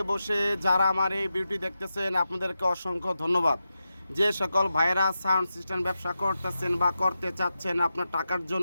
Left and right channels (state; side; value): inverted; both; correlation -0.90